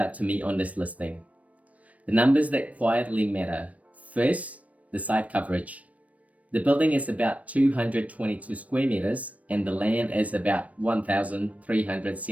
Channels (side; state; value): left; late; 0.068 ms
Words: to me on this listing. The numbers that quietly matter. First, the site coverage. The building is about 222 square meters and the land is about